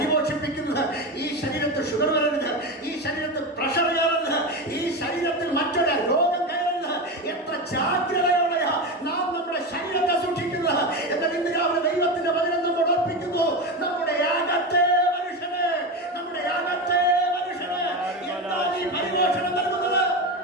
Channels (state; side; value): normal; both; correlation 0.19